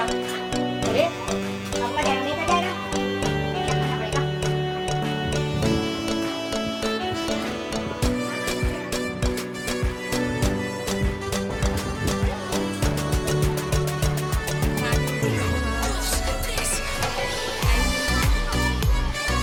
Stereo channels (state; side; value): identical; both; correlation 1.00